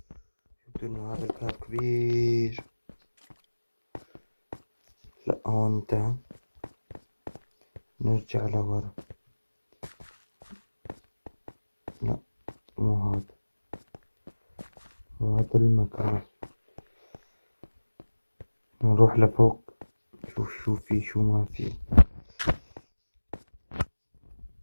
انه هذا الكاب كبير. لا هون انتهى، نرجع لورا. لا مو هذا، هذا المكان. نروح لفوق نشوف شو في شو ما في.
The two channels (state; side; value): inverted; both; correlation -1.00